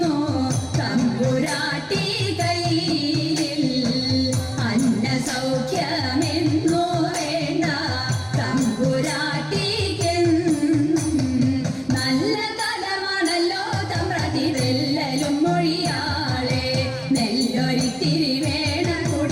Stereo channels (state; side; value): identical; both; correlation 1.00